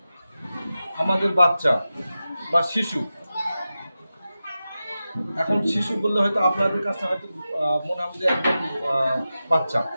আমাদের বাচ্চা বা শিশু। এখন শিশু বললে হয়তো আপনাদের কাছে হয়তো মনে হবে যে একদম বাচ্চা,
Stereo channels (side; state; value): both; inverted; correlation -0.93